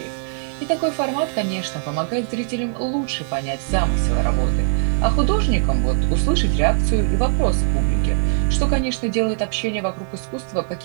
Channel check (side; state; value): left; silent; 57 dB below the other